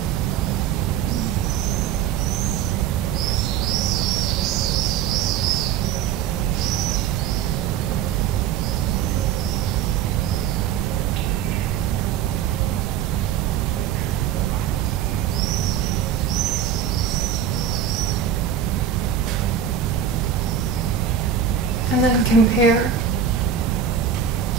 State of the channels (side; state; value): left; quieter; 8.8 dB